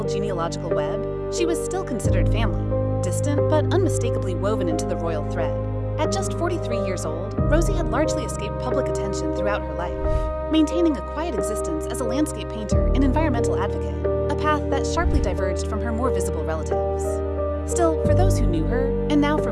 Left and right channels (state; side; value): identical; both; correlation 1.00